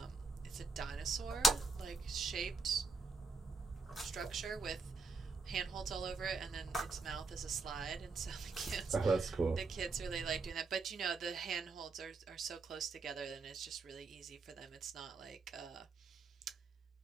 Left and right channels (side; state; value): left; quieter; 3.9 dB